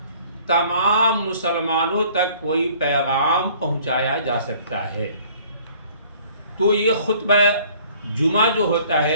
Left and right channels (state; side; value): inverted; both; correlation -0.55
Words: تمام مسلمانوں تک کوئی پیغام پہنچایا جا سکتا ہے۔ تو یہ خطبہ جمعہ جو ہوتا